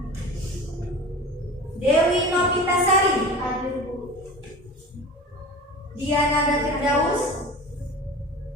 Dewi Novitasari. Hadir Bu. Diana Firdaus.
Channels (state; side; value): normal; both; correlation 0.35